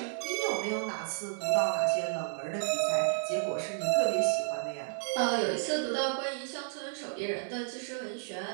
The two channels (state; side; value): silent; left; digital silence